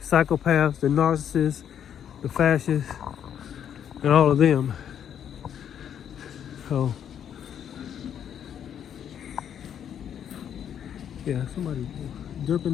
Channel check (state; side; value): quieter; right; 9.1 dB